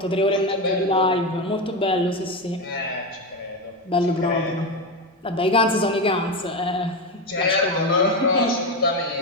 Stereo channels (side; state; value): both; normal; correlation 0.15